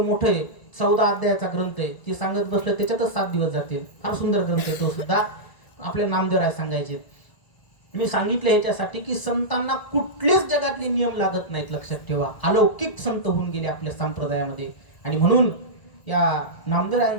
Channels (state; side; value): late; right; 1.0 ms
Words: मोठं आहे, 14 अध्यायाचा ग्रंथ आहे. ती सांगत बसलं त्याच्यातच 7 दिवस जातील. फार सुंदर ग्रंथ आहे तो सुद्धा. आपल्या नामदेवराय सांगायचे. मी सांगितलं ह्याच्यासाठी की संतांना कुठलेच जगातले नियम लागत नाहीत, लक्षात ठेवा. अलौकिक संत होऊन गेले आपल्या संप्रदायामध्ये. आणि म्हणून या